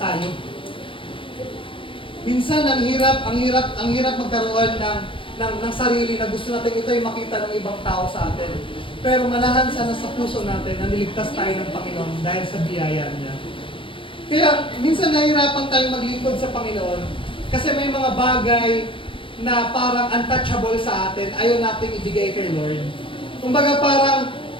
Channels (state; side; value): late; right; 0.25 ms